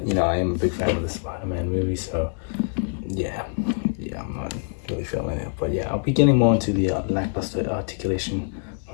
you know, I am a big fan of the Spider-Man movie, so yeah, I'm not really feeling it. But yeah, I'll be getting more into the lackluster articulation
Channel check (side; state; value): right; silent; 62 dB below the other